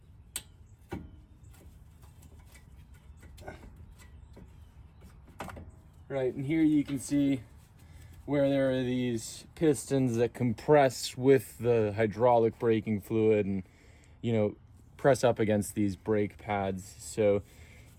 Right, and here you can see where there are these pistons that compress with the hydraulic braking fluid and, press up against these brake pads. So,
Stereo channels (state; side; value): identical; both; correlation 1.00